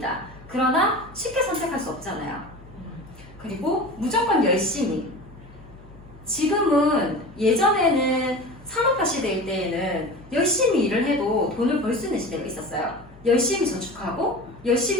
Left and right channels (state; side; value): normal; both; correlation 0.34